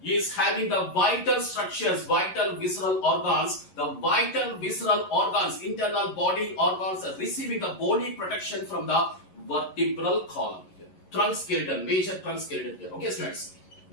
is having the vital structures, vital visceral organs. The vital visceral organs, internal body organs are receiving the bony protection from the vertebral column here. Trunk skeleton, major trunk skeleton here. Okay, students.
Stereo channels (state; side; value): late; right; 11 ms